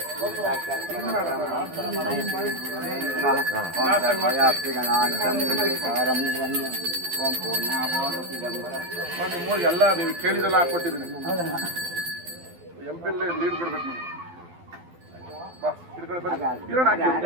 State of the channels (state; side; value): late; left; 12 ms